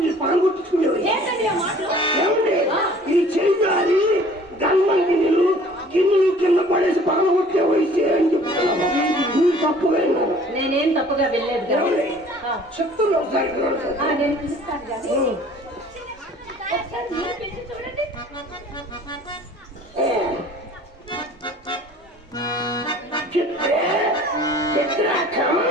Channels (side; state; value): both; normal; correlation 0.51